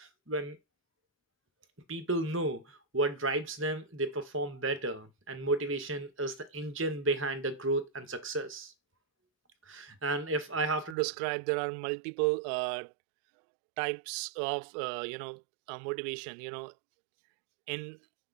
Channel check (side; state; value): left; drops out; at 11.0 s